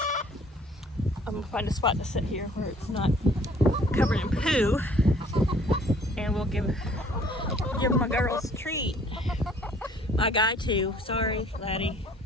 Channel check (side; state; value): both; normal; correlation 0.56